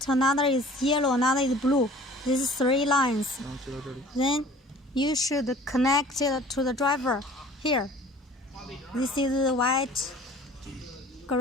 another is yellow, another is blue. These 3 lines. Then you should connect it to the driver here. This is white,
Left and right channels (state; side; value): normal; both; correlation 0.48